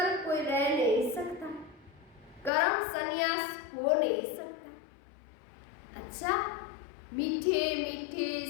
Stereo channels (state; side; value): drops out; right; at 2.5 s